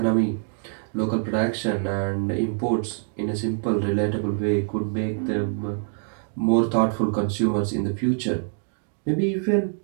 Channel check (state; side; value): silent; left; 62 dB below the other